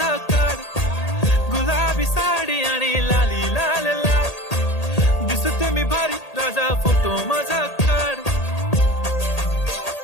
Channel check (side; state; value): right; late; 1.8 ms